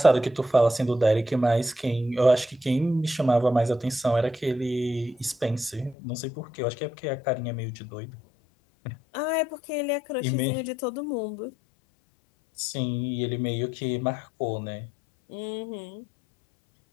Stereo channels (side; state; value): right; drops out; at 6.0 s